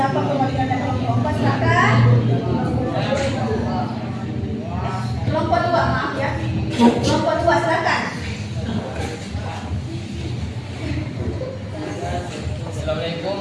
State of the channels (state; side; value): identical; both; correlation 1.00